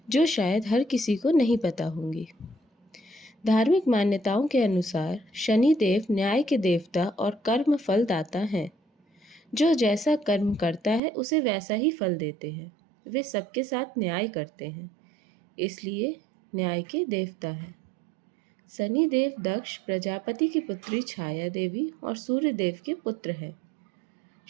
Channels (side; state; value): left; drops out; at 11.0 s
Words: जो शायद हर किसी को नहीं पता होंगी। धार्मिक मान्यताओं के अनुसार शनिदेव न्याय के देवता और कर्म फल दाता हैं। जो जैसा कर्म करता है उसे वैसा ही फल देते हैं। वे सबके साथ न्याय करते हैं, इसलिए न्याय के देवता हैं। शनिदेव दक्ष प्रजापति की पुत्री छाया देवी और सूर्य देव के पुत्र हैं।